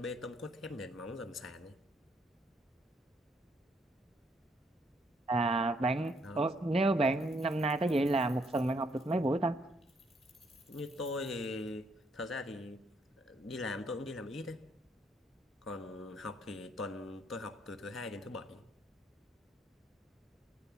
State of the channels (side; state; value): both; normal; correlation 0.71